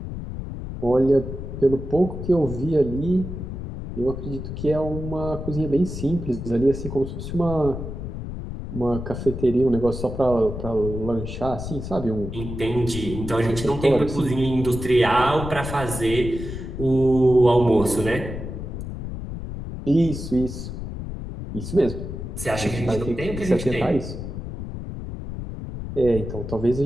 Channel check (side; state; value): left; noise; rumble, 7 dB below the sound